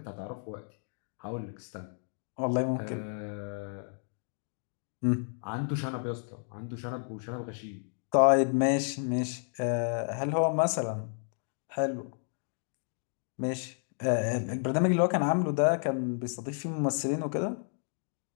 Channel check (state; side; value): silent; right; 57 dB below the other